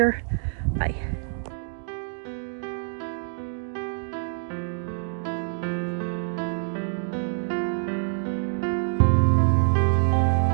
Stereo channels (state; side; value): silent; left; digital silence